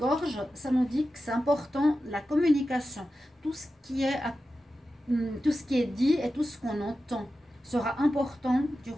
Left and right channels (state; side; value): normal; both; correlation 0.92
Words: ça nous dit que c'est important la communication. Tout ce qui est dit et tout ce qu'on entend sera important